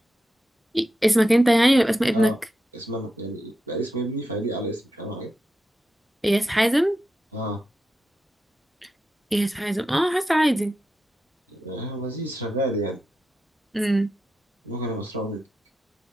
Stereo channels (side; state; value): both; normal; correlation 0.88